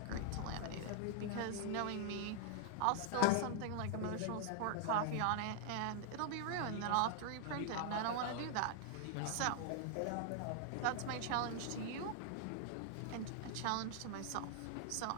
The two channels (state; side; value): different; both; correlation 0.00